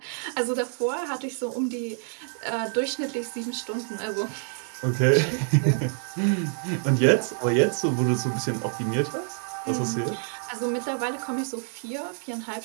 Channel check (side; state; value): left; silent; 55 dB below the other